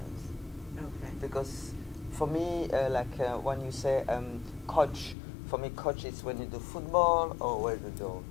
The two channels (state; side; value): drops out; right; at 5.2 s